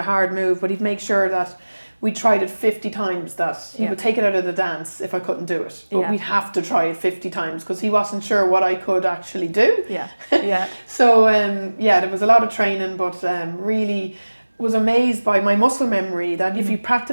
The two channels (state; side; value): inverted; both; correlation -1.00